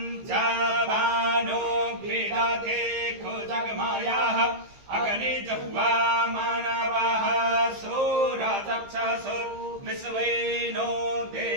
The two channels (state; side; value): late; left; 15 ms